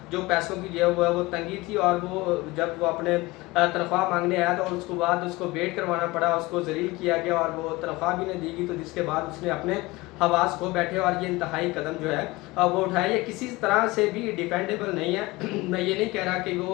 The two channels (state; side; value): quieter; right; 21.0 dB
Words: जो पैसों की जो है वो तंगी थी। और वो जब वो अपने तनख्वाह मांगने आया तो उसके बाद उसको वेट करवाना पड़ा, उसको ज़लील किया गया और वो तनख्वाह भी नहीं दी गई। तो जिसके बाद उसने अपने हवास खो बैठे और ये इंतहाई कदम जो है वो उठाया। ये किसी तरह से भी डिफेंडेबल नहीं है। मैं ये नहीं कह रहा कि वो